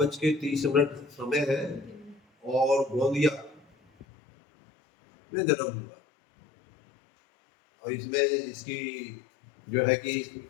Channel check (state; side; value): drops out; right; at 4.0 s